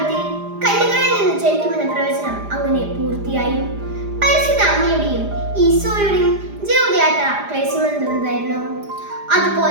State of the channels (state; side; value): late; left; 4.9 ms